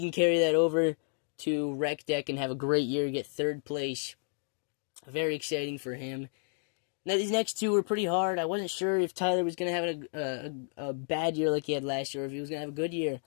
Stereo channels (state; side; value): silent; right; 57 dB below the other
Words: carry that over to Rec Deck and have a great year, get third place. Very exciting for him. Now, these next two were pretty hard. I wasn't sure if Tyler was going to have a bad year like he had last year, or if he was going to have a good year.